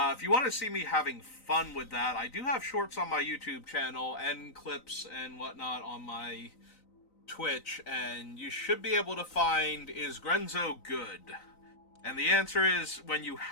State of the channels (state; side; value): late; right; 3.9 ms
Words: you want to see me having fun with that, I do have shorts on my YouTube channel and clips and whatnot on my Twitch, and you should be able to find, is Grenzo good? And the answer is, when you